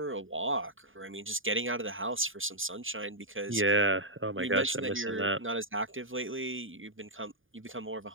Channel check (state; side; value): late; left; 0.58 ms